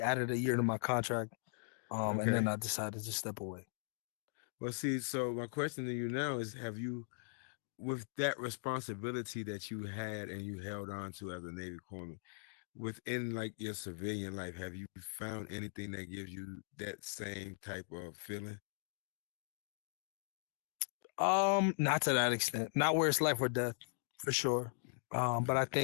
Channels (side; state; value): right; silent; digital silence